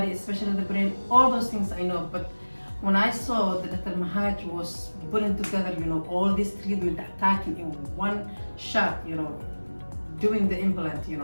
especially the brain, all those things I know. But when I saw that Dr. Mahaj was putting together, all this treatment, attacking in one shot, doing the implant,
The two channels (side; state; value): both; inverted; correlation -1.00